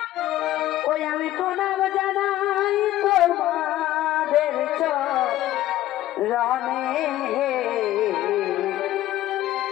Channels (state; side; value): quieter; right; 14.4 dB